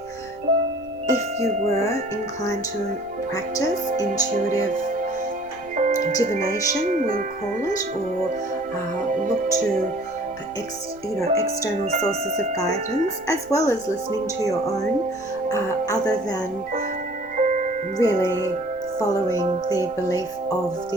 if you were inclined to practice intuitive divination, we'll call it, or look to external sources of guidance, as well as listening to your own, other than really following the belief of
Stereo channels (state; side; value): noise; right; rumble, 26 dB below the sound